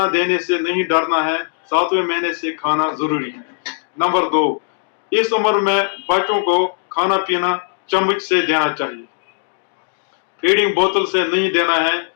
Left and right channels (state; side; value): silent; right; digital silence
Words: देने से नहीं डरना है, 7वें महीने से खाना जरूरी है। नंबर 2, इस उम्र में बच्चों को खाना पीना चम्मच से देना चाहिए, फीडिंग बोतल से नहीं देना है,